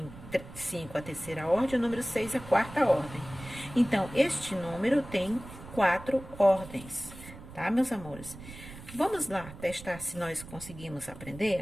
a terceira ordem, o número 6 a quarta ordem. Então, este número tem 4 ordens, tá, meus amores? Vamos lá testar se nós conseguimos aprender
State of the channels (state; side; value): noise; right; rumble, 15 dB below the sound